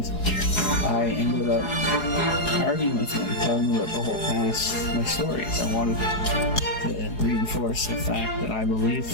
I ended up arguing with him, telling him about the whole past, my stories. I wanted to reinforce the fact that I believed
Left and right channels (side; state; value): right; late; 4.8 ms